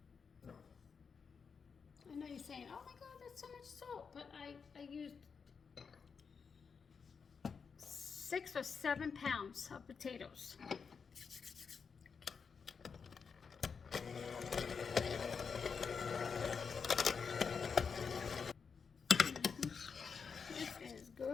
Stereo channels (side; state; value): right; quieter; 5.8 dB